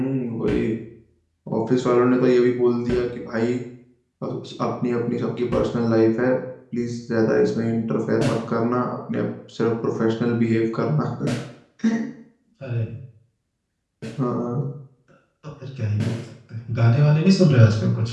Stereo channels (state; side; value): identical; both; correlation 1.00